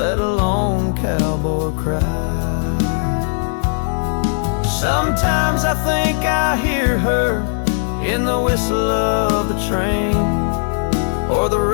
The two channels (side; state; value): right; silent; 67 dB below the other